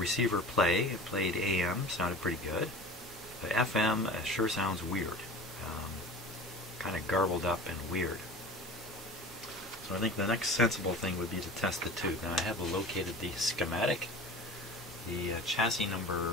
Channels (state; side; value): normal; both; correlation 0.38